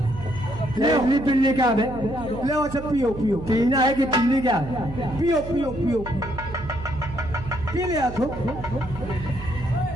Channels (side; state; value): right; noise; hum, 11 dB below the sound